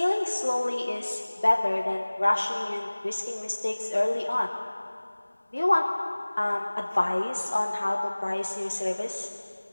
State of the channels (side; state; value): both; inverted; correlation -1.00